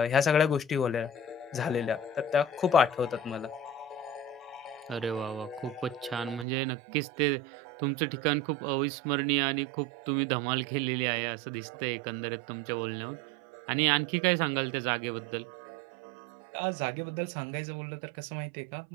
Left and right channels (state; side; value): drops out; left; at 6.5 s